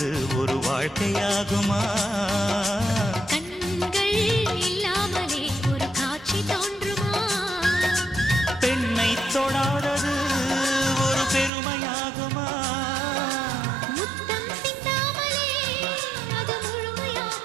ஒரு வாழ்க்கையாகுமா? கண்கள் இல்லாமலே ஒரு காட்சி தோன்றுமா? பெண்ணை தொடாதது ஒரு பெருமையாகுமா? முத்தம் சிந்தாமலே அது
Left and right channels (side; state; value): left; drops out; at 11.5 s